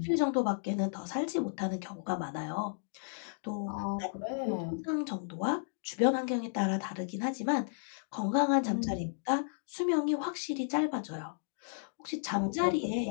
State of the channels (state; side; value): silent; right; digital silence